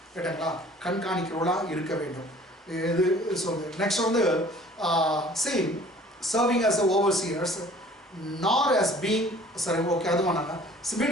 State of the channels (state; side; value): normal; both; correlation 0.51